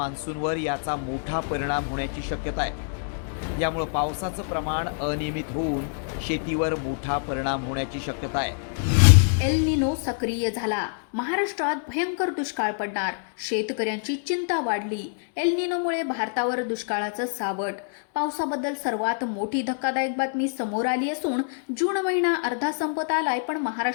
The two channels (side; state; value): right; silent; digital silence